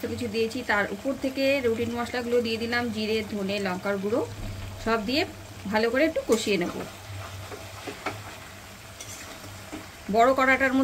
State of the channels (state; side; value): identical; both; correlation 1.00